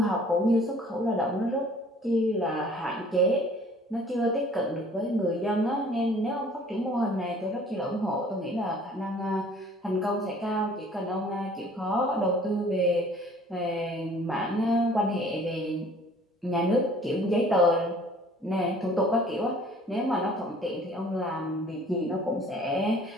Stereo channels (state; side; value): normal; both; correlation 0.53